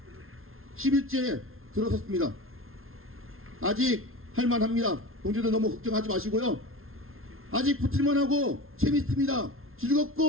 10일째 들어섰습니다. 아직 할만합니다. 동지들 너무 걱정하지 마시고요. 아직 붙을만하고 재밌습니다.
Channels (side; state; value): left; late; 0.61 ms